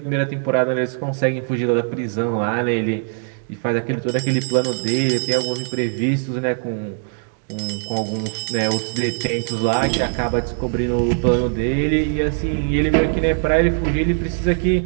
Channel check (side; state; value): left; silent; 65 dB below the other